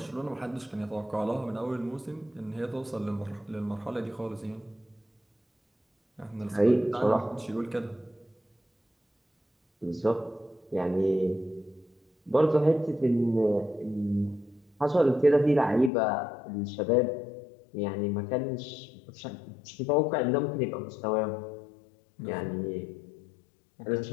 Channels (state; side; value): drops out; right; at 15.9 s